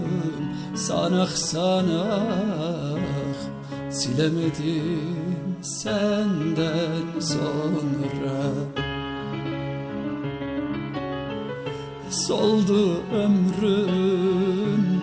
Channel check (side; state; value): both; identical; correlation 1.00